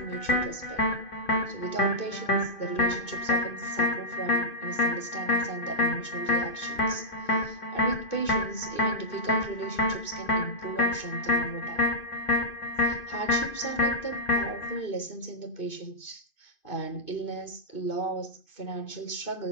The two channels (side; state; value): right; late; 2.5 ms